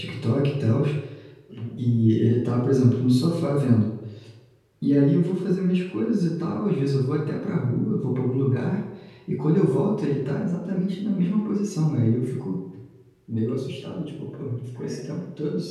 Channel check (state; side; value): identical; both; correlation 1.00